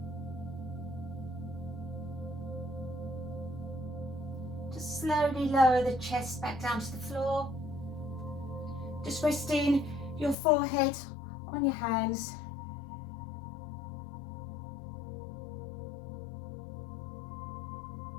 Just slowly lower the chest back down to the floor. Just resting your forehead on your hands.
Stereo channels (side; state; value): right; drops out; at 10.4 s